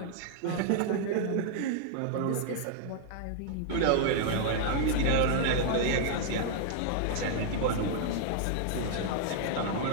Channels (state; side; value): different; both; correlation -0.01